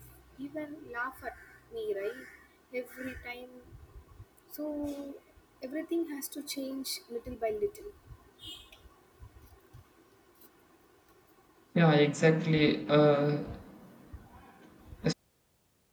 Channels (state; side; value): identical; both; correlation 1.00